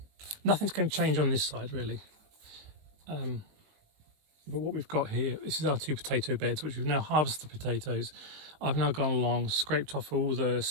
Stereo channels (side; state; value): left; late; 19 ms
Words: nothing's going to change on this side really, but what we've got here, this is our two potato beds which we've now harvested potatoes. I've now gone along, scraped off all the